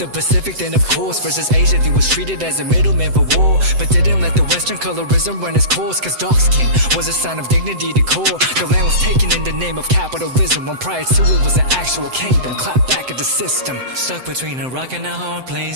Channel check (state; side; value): late; left; 7.8 ms